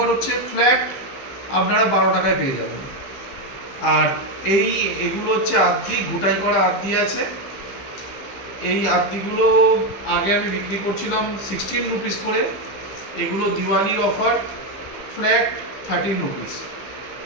হচ্ছে, ফ্ল্যাট আপনারা 12 টাকায় পেয়ে যাবেন। আর এগুলো হচ্ছে আদ্দি, ঘুটাই করা আদ্দি আছে। এই আদ্দিগুলো আগে আমি বিক্রি করছিলাম 16 রুপিস করে। এগুলো দিওয়ালির অফার, ফ্ল্যাট 13 রুপিস।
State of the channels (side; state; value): right; late; 15 ms